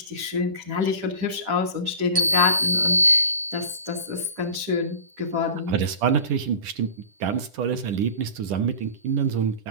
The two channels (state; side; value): late; left; 10 ms